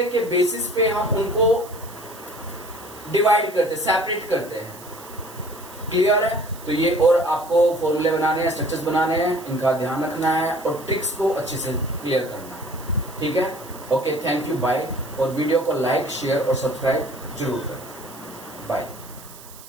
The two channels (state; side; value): noise; right; hiss, 18 dB below the sound